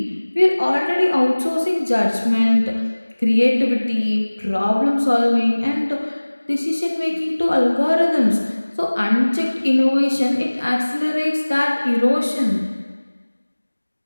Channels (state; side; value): inverted; both; correlation -1.00